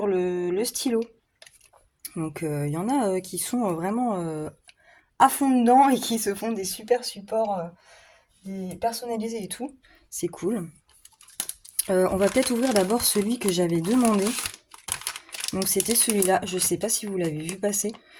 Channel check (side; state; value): both; identical; correlation 1.00